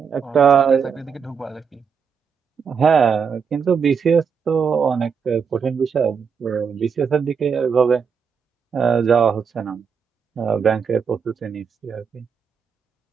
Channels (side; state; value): left; quieter; 6.4 dB